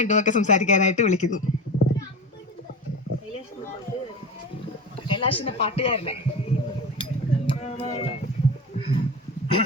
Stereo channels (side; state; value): both; normal; correlation 0.27